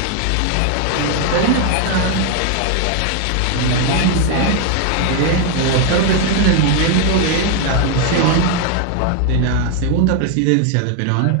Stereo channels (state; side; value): different; both; correlation 0.01